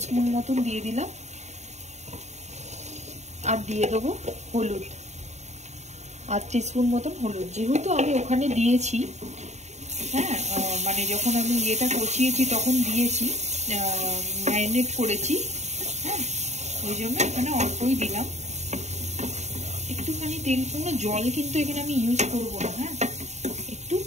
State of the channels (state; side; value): late; left; 0.33 ms